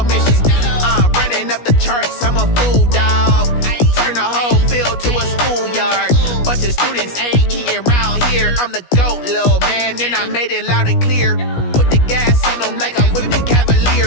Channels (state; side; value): late; right; 17 ms